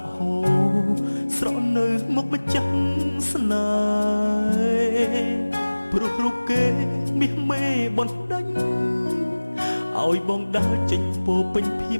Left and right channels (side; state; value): both; inverted; correlation -1.00